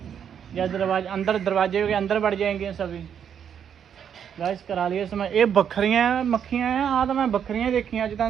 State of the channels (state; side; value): quieter; left; 8.3 dB